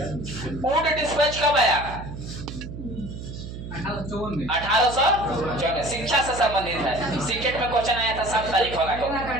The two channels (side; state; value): right; noise; hum, 10 dB below the sound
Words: ऊंट डिस्पैच कब आया? 1854। शिक्षा से संबंधित है, सीटेट में क्वेश्चन आया था 7 तारीख होगा।